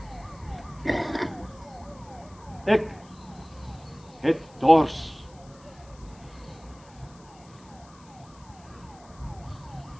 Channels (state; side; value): noise; left; hiss, 26 dB below the sound